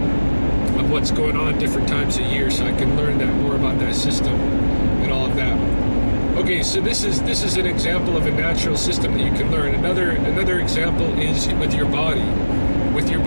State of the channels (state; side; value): inverted; both; correlation -1.00